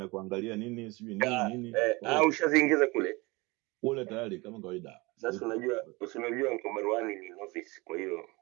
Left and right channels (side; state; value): left; quieter; 24.3 dB